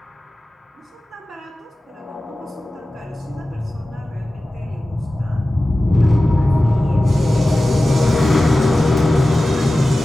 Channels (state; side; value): normal; both; correlation 0.95